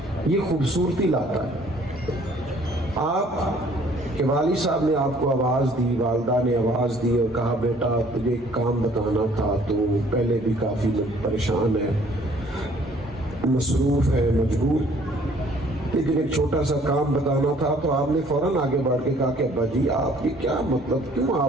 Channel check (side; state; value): both; normal; correlation 0.58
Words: یہ خوبصورتی لاتا ہے۔ آپ کہ والد صاحب نے آپ کو آواز دی، والدہ نے آواز دی اور کہا، بیٹا تجھے ایک کام بتانا تھا، تو پہلے بھی کافی پریشان ہے، مصروف ہے، مجبور، لیکن ایک چھوٹا سا کام بتانا تھا، تو آپ نے فوراً آگے بڑھ کے کہا کہ ابا جی آپ یہ کیا مطلب، کیوں